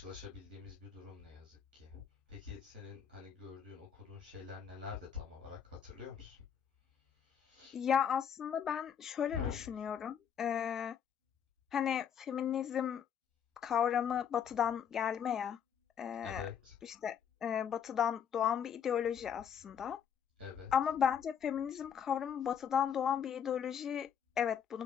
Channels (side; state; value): right; quieter; 8.2 dB